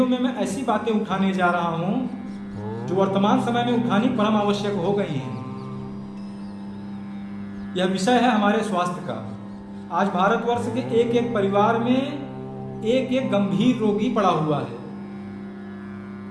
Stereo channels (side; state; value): both; identical; correlation 1.00